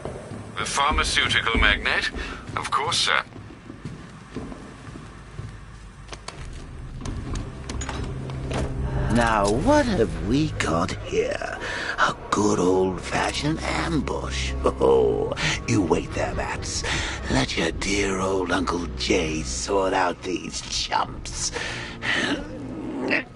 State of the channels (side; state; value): both; identical; correlation 1.00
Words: The pharmaceutical magnate? Of course, sir. Now, what have we got here? A good old-fashioned ambush. Oh, you wait there, Bats. Let your dear old Uncle Jay sort out these chumps.